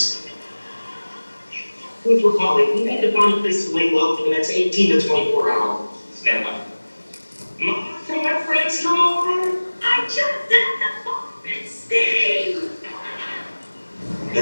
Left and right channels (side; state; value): both; inverted; correlation -1.00